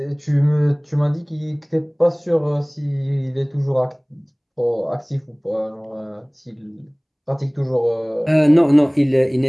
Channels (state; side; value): identical; both; correlation 1.00